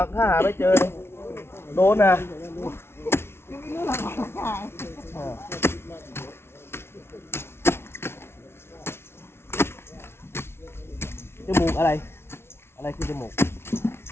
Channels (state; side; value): late; right; 0.12 ms